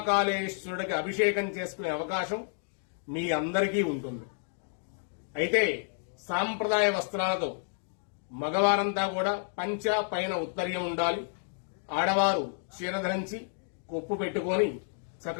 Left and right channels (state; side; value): silent; right; digital silence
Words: అభిషేకం చేసుకునే అవకాశం మీ అందరికీ ఉంటుంది. అయితే సాంప్రదాయ వస్త్రాలతో మగవారంతా కూడా పంచ పైన ఉత్తరీయం ఉండాలి. ఆడవారు చీర ధరించి కొప్పు పెట్టుకొని